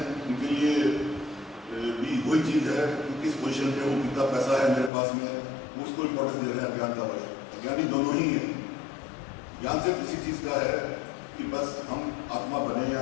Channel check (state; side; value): drops out; right; at 4.9 s